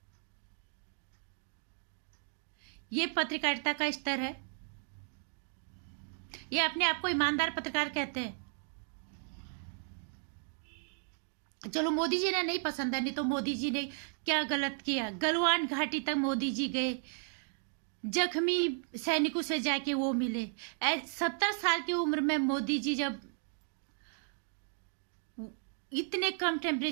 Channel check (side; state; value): left; silent; 55 dB below the other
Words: ये पत्रकारिता का स्तर है? ये अपने आप को ईमानदार पत्रकार कहते हैं? चलो मोदी जी ने नहीं पसंद है, नहीं तो मोदी जी ने क्या गलत किया? गलवान घाटी तक मोदी जी गए, जख्मी सैनिकों से जाके वो मिले। 70 साल की उम्र में मोदी जी जब इतने कम